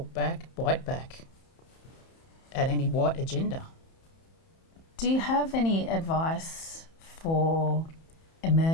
back, bite back at any white agenda. Do you have any advice for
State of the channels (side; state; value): right; late; 31 ms